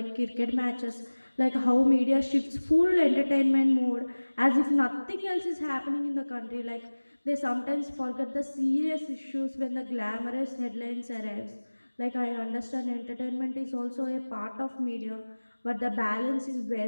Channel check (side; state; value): both; inverted; correlation -1.00